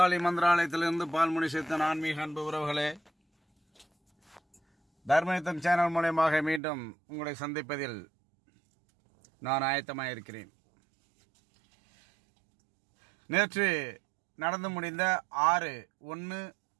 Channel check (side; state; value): left; drops out; at 6.6 s